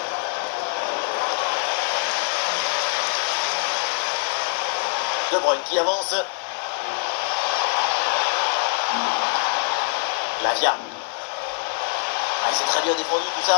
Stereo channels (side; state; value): right; silent; digital silence